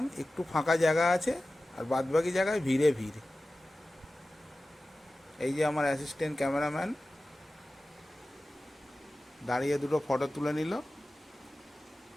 একটু ফাঁকা জায়গা আছে, আর বাদবাকি জায়গায় ভিড়ে ভিড়। এই যে আমার অ্যাসিস্ট্যান্ট ক্যামেরাম্যান দাঁড়িয়ে দুটো ফটো তুলে নিল।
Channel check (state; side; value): normal; both; correlation 0.96